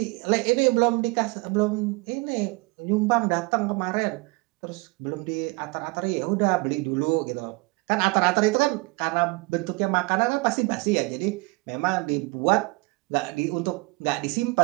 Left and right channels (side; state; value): left; quieter; 26.8 dB